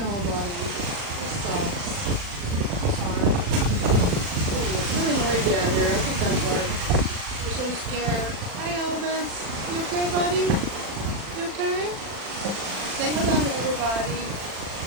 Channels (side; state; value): left; late; 40 ms